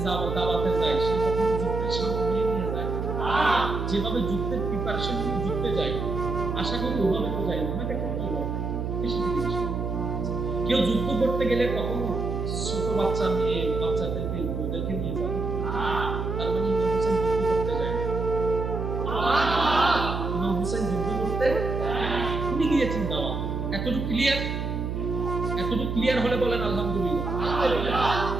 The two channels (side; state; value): right; noise; hum, 3 dB below the sound